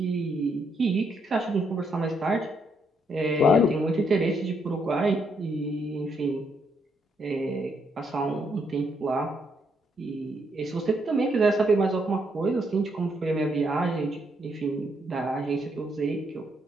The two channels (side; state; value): both; normal; correlation 0.75